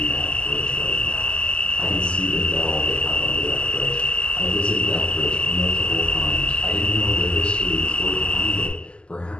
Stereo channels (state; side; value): late; right; 0.052 ms